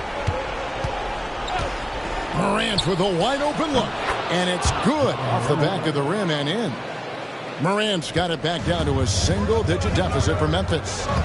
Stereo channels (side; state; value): both; identical; correlation 1.00